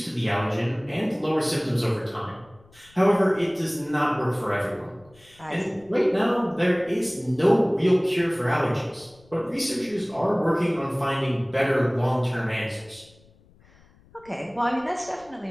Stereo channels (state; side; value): noise; left; rumble, 28 dB below the sound